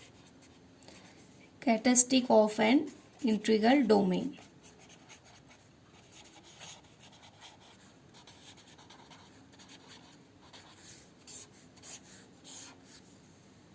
Characteristic of an integral domain.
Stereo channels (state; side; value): identical; both; correlation 1.00